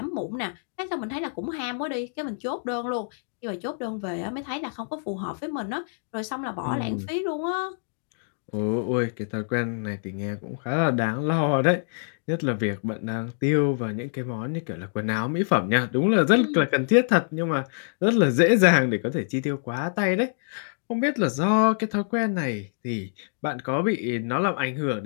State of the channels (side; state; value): right; silent; digital silence